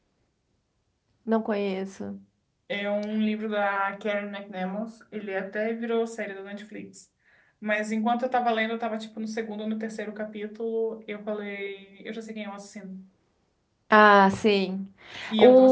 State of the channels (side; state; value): both; identical; correlation 1.00